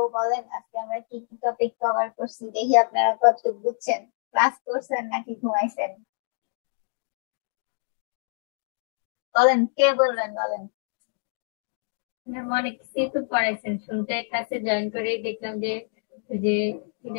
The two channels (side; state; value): right; silent; digital silence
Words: বলেন আজকে আমরা কি কি টপিক কভার করছি, দেখি আপনারা কতটুকু বুঝছেন, ক্লাস করছেন নাকি ঘুমাইছেন। বলেন, কে বলবেন, বলেন। ম্যাম অনেক কিছুই তো পড়াইছেন, শুনতে ক্লাসে জয়েন করেই দেখলাম যে যে কি